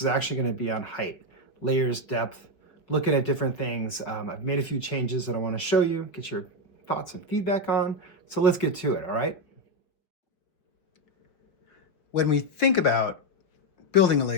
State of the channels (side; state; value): right; late; 5.6 ms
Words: actually going to be on height, layers, depth, looking at different things. I've made a few changes that I want to show you, get your thoughts and feedback on. So let's get to it, all right? When we think about building a